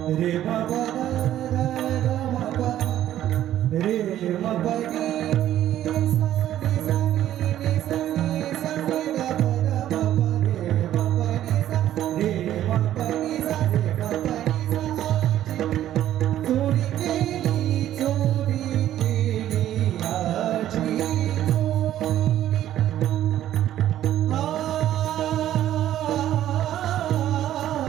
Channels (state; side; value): quieter; left; 12.3 dB